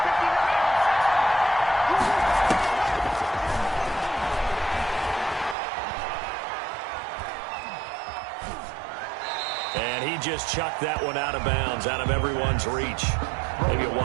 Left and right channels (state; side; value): drops out; left; at 5.6 s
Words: Just chucked that one out of bounds, out of everyone's reach. Maybe a